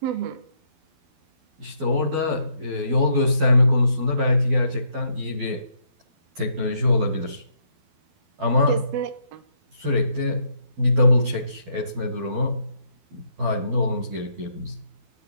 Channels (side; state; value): left; late; 12 ms